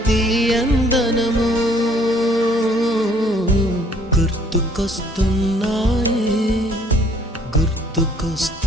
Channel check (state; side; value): normal; both; correlation 0.60